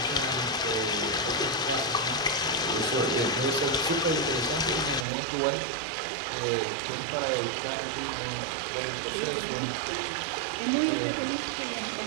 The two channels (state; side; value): drops out; left; at 5.1 s